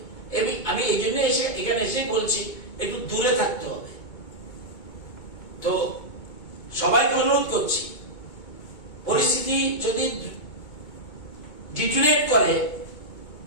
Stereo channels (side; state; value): right; late; 2.2 ms